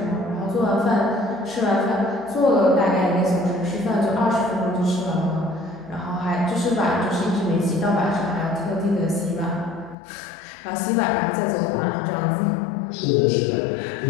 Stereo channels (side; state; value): right; drops out; at 10.0 s